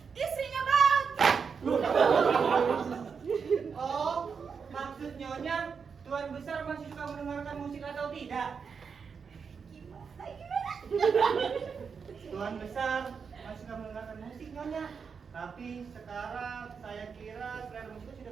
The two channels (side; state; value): left; quieter; 6.0 dB